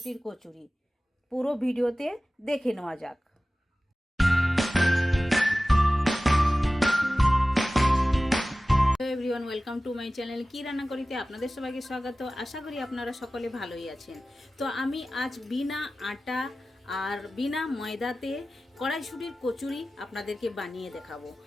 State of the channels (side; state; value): both; normal; correlation 0.96